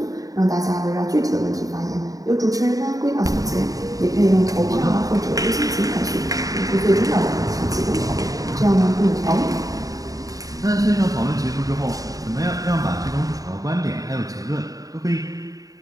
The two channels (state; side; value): late; left; 0.17 ms